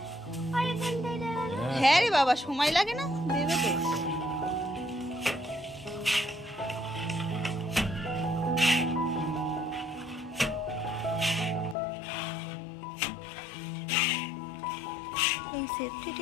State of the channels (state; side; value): drops out; right; at 11.8 s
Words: আর এখানটায় দেবে না। হ্যাঁ রে বাবা, সময় লাগে না, দেবে তো। এই সেফটি